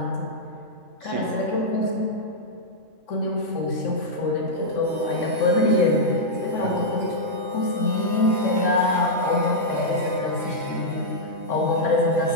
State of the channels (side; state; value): right; late; 3.6 ms